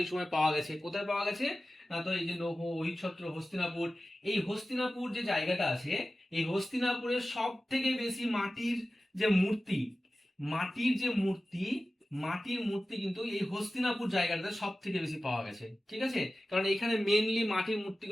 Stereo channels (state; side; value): normal; both; correlation 0.95